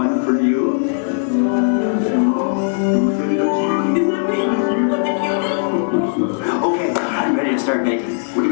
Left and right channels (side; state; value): right; silent; digital silence